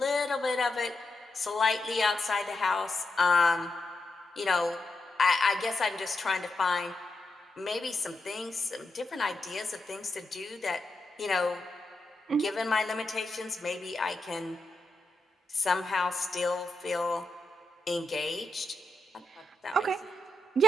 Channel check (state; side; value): normal; both; correlation 0.86